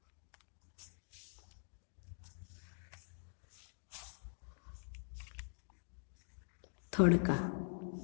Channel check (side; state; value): right; silent; digital silence